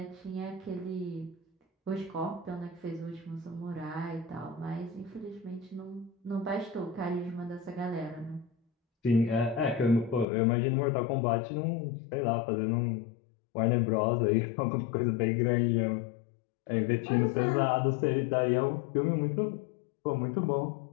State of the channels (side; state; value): right; drops out; at 10.2 s